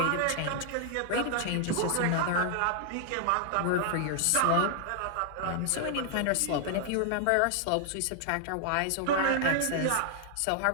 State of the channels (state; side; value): different; both; correlation -0.01